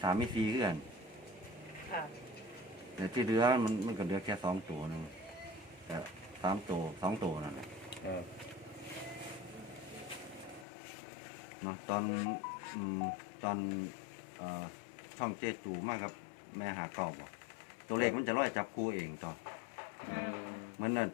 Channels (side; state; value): right; drops out; at 10.7 s